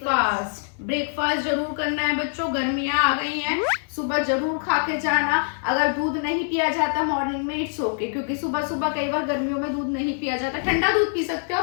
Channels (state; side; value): silent; right; digital silence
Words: जरूर करना है बच्चों, गर्मियां आ गई हैं, सुबह जरूर खा के जाना। अगर दूध नहीं पिया जाता मॉर्निंग में इट्स ओके, क्योंकि सुबह सुबह कई बार गर्मियों में दूध नहीं पिया जाता। ठंडा दूध पी सकते हो,